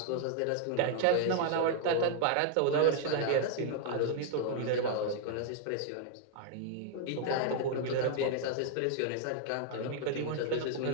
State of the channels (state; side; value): different; both; correlation -0.01